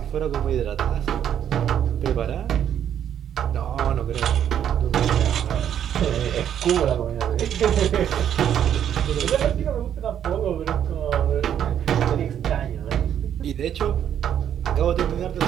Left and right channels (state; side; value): quieter; left; 9.6 dB